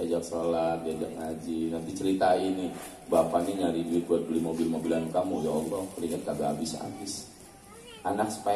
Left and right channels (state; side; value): identical; both; correlation 1.00